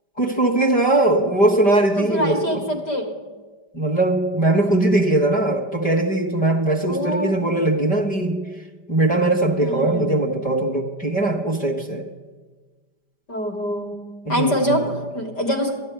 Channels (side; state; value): right; late; 5.1 ms